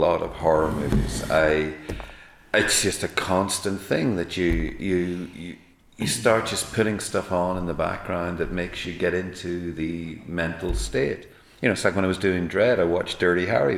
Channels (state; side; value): identical; both; correlation 1.00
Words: of horror movies. It's just a constant thing that you start just putting stuff on in the background that makes you get into the mental state. You know, it's like when I was doing Dread, I watched Dirty Harry.